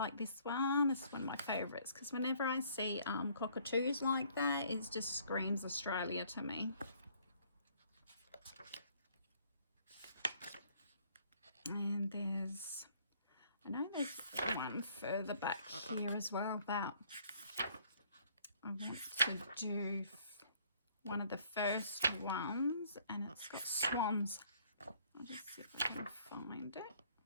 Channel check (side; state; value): both; inverted; correlation -0.61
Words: this one. This is one of my favourites, because whenever I see cockatoos like that, it just screams Australia to me. And I know there's one further back here as well that I want to do, one of the first ones, and it's got swans. I'll just see if I can find it.